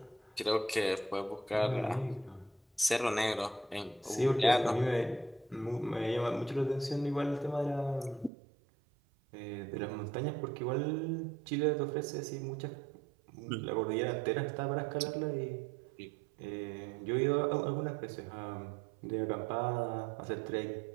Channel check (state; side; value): drops out; left; at 8.3 s